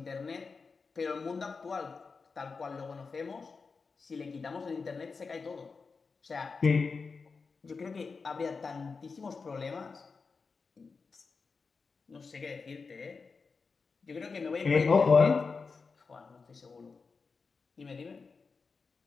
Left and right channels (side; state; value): right; quieter; 4.7 dB